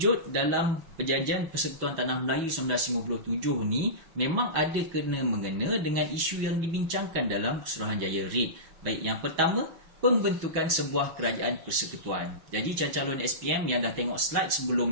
dalam Perjanjian Persekutuan Tanah Melayu 1957 ni memang ada kena-mengena dengan isu yang dibincangkan dalam Suruhanjaya REIT. Baik, yang pertama, pembentukan sebuah kerajaan persekutuan. Jadi calon-calon SPM yang dah tengok slide sebelum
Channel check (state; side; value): late; left; 6.1 ms